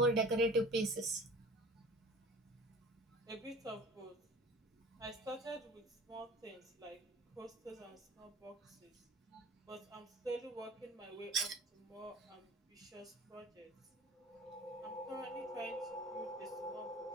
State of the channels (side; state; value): both; normal; correlation 0.42